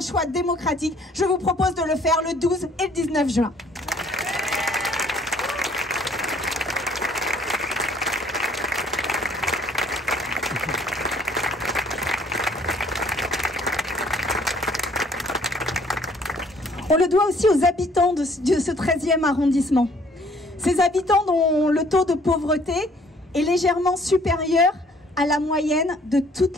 choix démocratique. Je vous propose de le faire le 12 et le 19 juin. On le doit aussi aux habitants de ce 13e arrondissement. Ces habitants dont le taux de pauvreté est légèrement supérieur à la moyenne de toute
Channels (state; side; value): normal; both; correlation 0.59